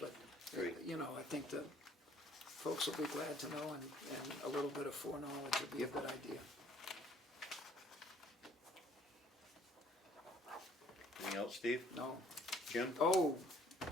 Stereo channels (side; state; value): both; normal; correlation 0.59